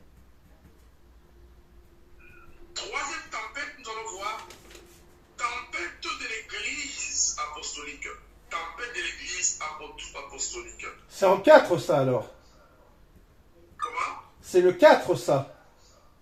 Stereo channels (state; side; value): identical; both; correlation 1.00